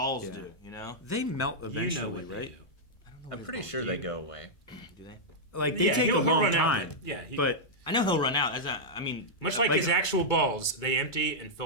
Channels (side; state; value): right; late; 2.2 ms